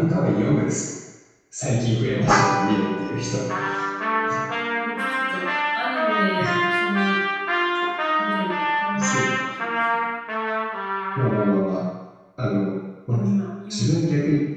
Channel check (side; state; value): both; identical; correlation 1.00